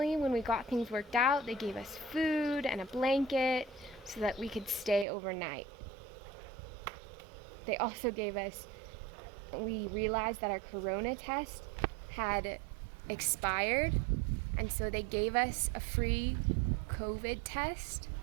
when we got things worked out, they gave us food and a blanket so that we could stay overnight. They also gave us, we realized that our corona test had expired, and so they gave us a free COVID test.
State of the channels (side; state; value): left; drops out; at 5.1 s